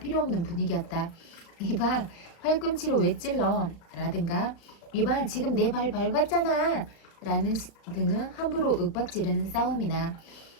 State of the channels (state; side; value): late; right; 35 ms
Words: 없는 분위기였다. 이봐, 팔꿈치로 왜 찔러? 라든가 이봐, 지금 내 발 밟았잖아! 라는 등은 함부로 윽박지르는 싸움이나